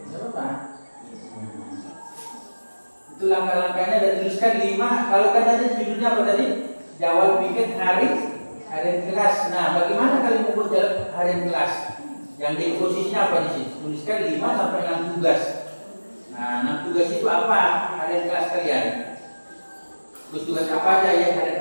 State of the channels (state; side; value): inverted; both; correlation -1.00